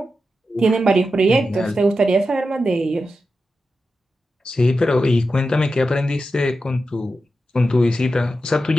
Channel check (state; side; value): normal; both; correlation 0.90